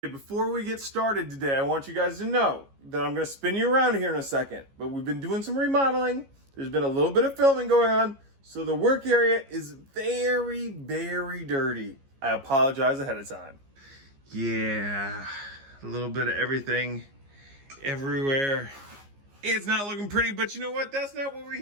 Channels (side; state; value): left; late; 15 ms